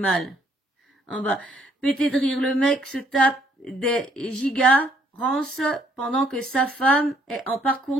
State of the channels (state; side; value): normal; both; correlation 0.66